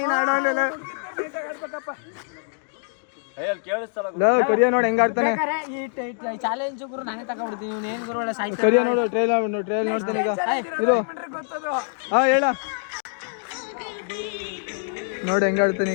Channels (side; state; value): right; silent; digital silence